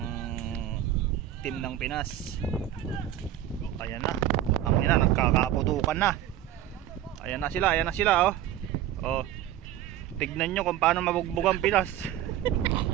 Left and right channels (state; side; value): quieter; left; 12.0 dB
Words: team ng Pinas. Ayan na. Ang ina, nagkakaputukan na. Ayan na sila oh. Oh. Tignan nyo kung paano mabugbog ang Pinas.